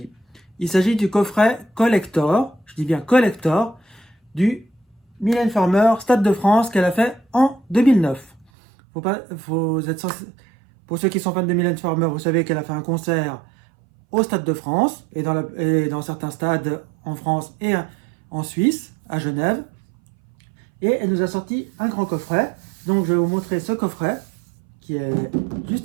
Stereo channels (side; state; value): left; drops out; at 8.5 s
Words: Il s'agit du coffret collector, je dis bien collector, du Mylène Farmer Stade de France qu'elle a fait en 2009. Pour ceux qui sont fans de Mylène Farmer, vous savez qu'elle a fait un concert au Stade de France et dans certains stades en France et en Suisse, à Genève. Et elle nous a sorti un grand coffret. Donc je vais vous montrer ce coffret qui est